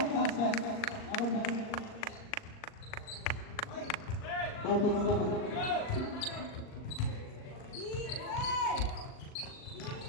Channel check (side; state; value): right; late; 38 ms